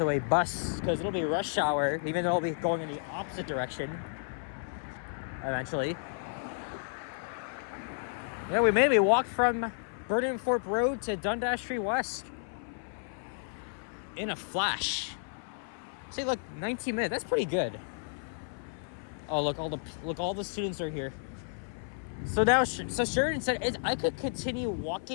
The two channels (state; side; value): silent; right; 56 dB below the other